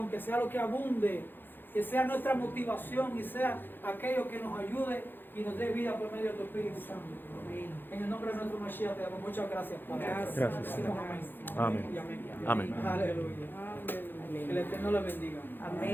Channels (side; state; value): right; late; 0.097 ms